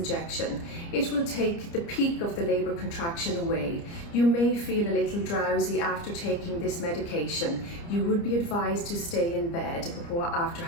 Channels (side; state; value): right; late; 29 ms